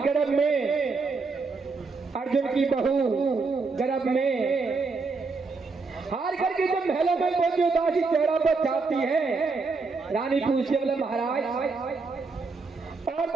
में, अर्जुन की बहू गर्भ में, हार करके जब महलों में पहुंची उदासी चेहरा पर छाती है। रानी पूछते बोले महाराज, और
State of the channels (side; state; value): left; quieter; 4.2 dB